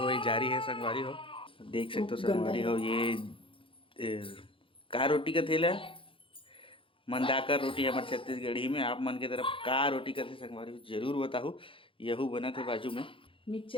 जारी है संगवारी हो। देख सकते हो संगवारी हो ये का रोटी का थेला मंदाकर रोटी हमारे छत्तीसगढ़ी में। आप मन के तरफ का रोटी का थे संगवारी हो जरूर बताओ। यहू बना थे बाजू में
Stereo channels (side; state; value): right; late; 0.25 ms